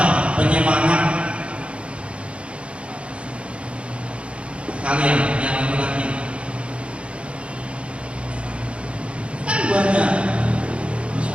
penyemangat kalian yang laki-laki? Kan banyak, bisa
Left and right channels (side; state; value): left; late; 0.059 ms